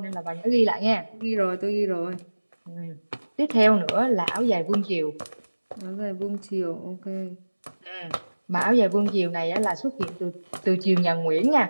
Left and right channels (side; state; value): both; inverted; correlation -1.00